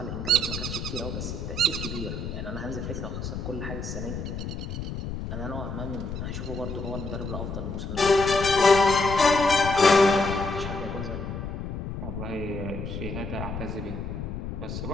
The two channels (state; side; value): noise; left; rumble, 6 dB below the sound